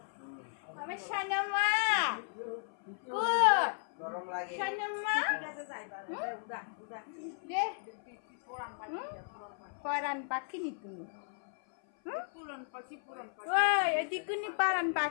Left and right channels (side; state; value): right; silent; 54 dB below the other